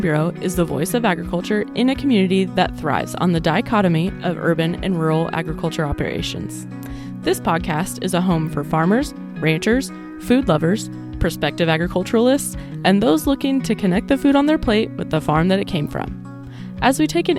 Bureau is the voice of agriculture in a community that thrives on the dichotomy of urban and rural agriculture operations. This podcast is a home for farmers, ranchers, food lovers, prospective agriculturalists, and those looking to connect the food on their plate with the farm that it came from. As we take an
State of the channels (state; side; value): identical; both; correlation 1.00